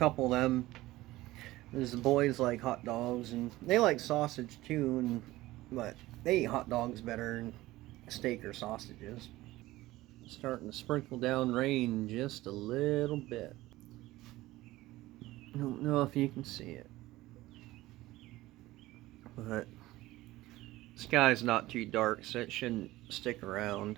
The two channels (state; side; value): quieter; left; 17.6 dB